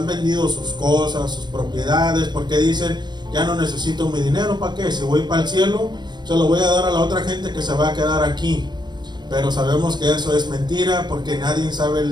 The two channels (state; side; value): late; left; 0.21 ms